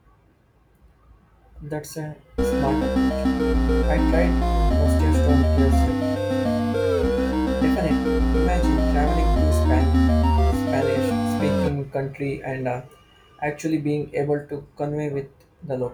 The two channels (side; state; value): both; identical; correlation 1.00